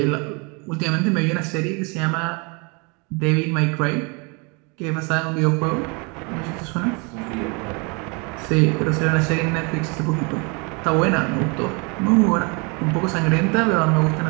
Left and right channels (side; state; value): left; quieter; 31.2 dB